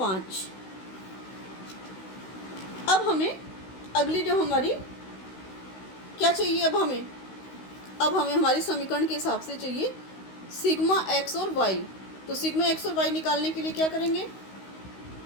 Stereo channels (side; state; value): right; late; 16 ms